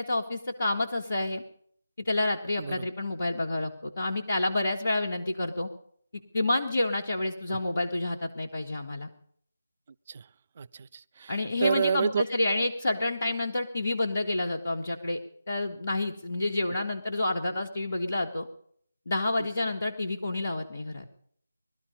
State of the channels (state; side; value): inverted; both; correlation -0.89